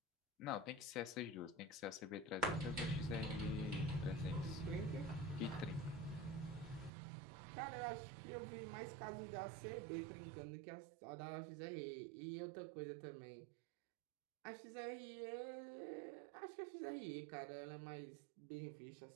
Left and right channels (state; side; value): drops out; left; at 6.9 s